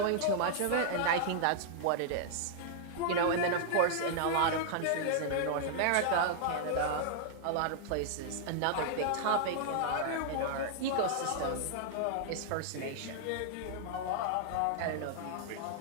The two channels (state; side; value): different; both; correlation -0.01